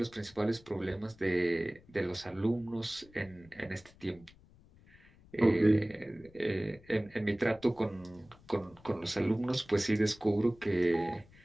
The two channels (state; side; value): noise; left; rumble, 25 dB below the sound